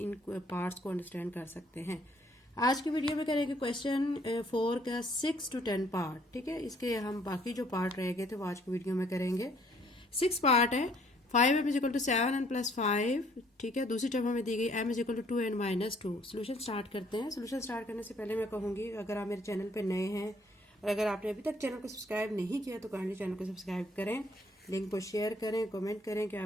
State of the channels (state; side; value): normal; both; correlation 0.63